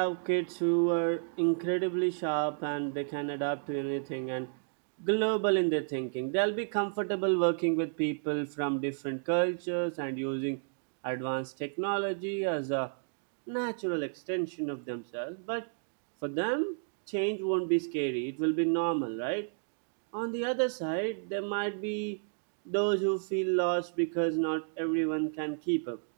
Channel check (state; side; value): silent; left; digital silence